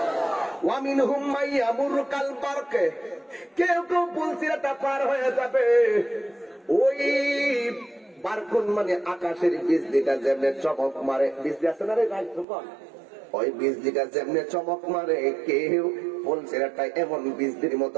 ওয়া মিনহুম মান ইয়ামুরু কাল বারক, কেউ কেউ পুল সিরাতটা পার হয়ে যাবে ওই বারকুন মানে আকাশের বিজলিটা যেমনে চমক মারে, বিজলি আছে না রে ভাই তখন, ওই বিজলিটা যেমনে চমক মারে কেউ পুল সিরাতটা এমন বিজলির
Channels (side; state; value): left; drops out; at 12.5 s